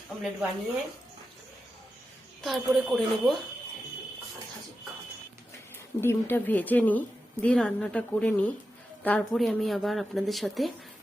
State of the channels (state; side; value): normal; both; correlation 0.90